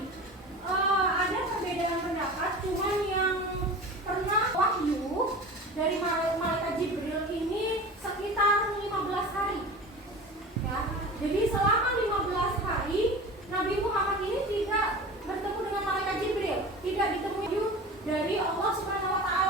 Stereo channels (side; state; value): both; normal; correlation 0.35